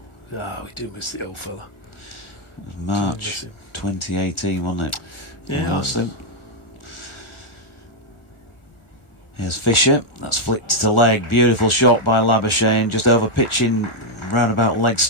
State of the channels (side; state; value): right; late; 1.4 ms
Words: We do miss the old fella. It was March 2018, wasn't it? Yeah. Here's Fisher, that's flicked to leg, beautiful shot by Labuschagne, just over pitching roundabout leg